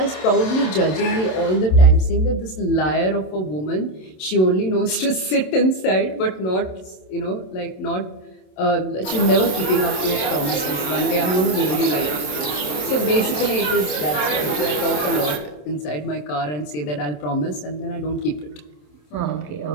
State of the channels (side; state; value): right; late; 27 ms